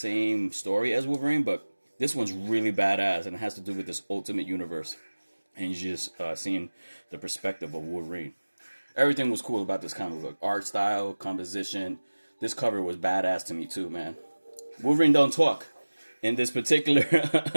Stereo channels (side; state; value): both; inverted; correlation -1.00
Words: story as Wolverine, but this one's really badass, and it has to do with this ultimate universe. And you're just seeing the perspective of Wolverine. Everything was cool about this comic book. Art style, composition. This cover was badass to me too, man. Wolverine don't talk in this particular